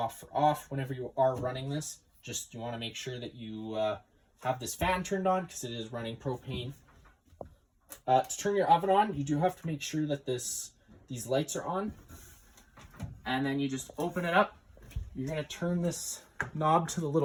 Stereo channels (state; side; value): identical; both; correlation 1.00